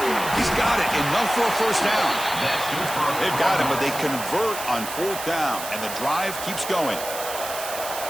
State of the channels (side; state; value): right; noise; hiss, 8 dB below the sound